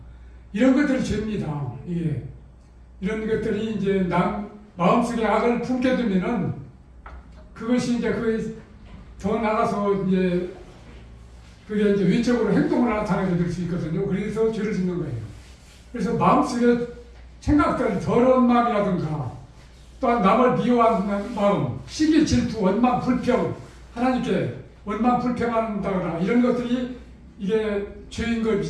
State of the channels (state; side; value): identical; both; correlation 1.00